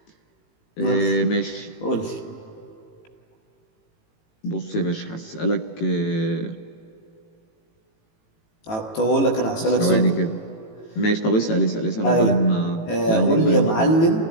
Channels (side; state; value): right; late; 18 ms